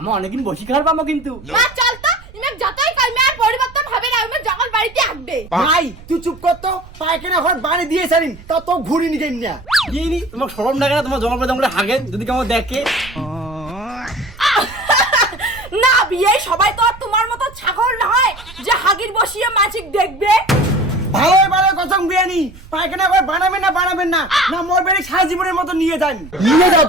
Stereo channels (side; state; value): right; noise; rumble, 19 dB below the sound